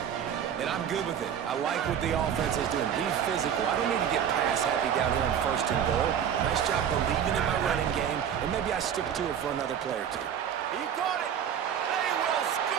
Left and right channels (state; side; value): quieter; left; 8.8 dB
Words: And I'm good with it. I like what the offense is doing. Be physical. I don't need to get pass happy down here on 1st and goal. Nice job believing in my running game, and maybe I stick to it for another play or 2. He got it. They will